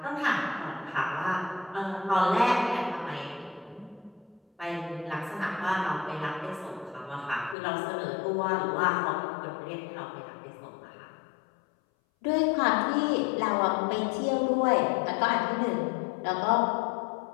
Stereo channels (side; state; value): right; drops out; at 7.6 s